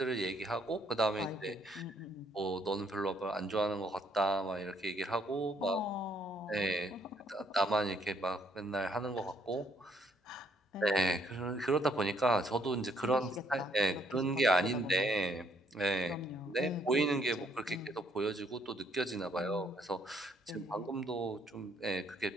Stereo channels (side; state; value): both; normal; correlation 0.68